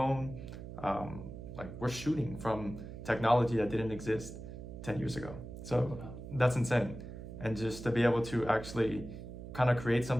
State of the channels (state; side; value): noise; right; hum, 11 dB below the sound